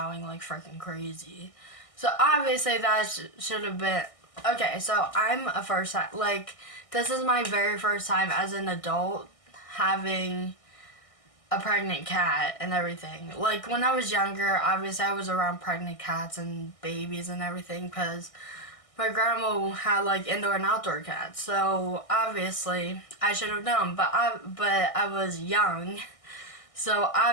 like freaking crazy. So obviously that should have been, okay, so I'm a first time, like, this is my very first time as an adult having a pregnant cat and everything. Like, when I was younger, obviously I was around pregnant cats and babies and everything because my grandma had, like, indoor and outdoor cats. So, obviously, I should have known. But I was young. So,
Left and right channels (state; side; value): late; right; 1.6 ms